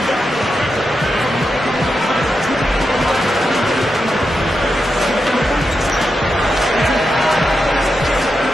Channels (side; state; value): both; normal; correlation 0.87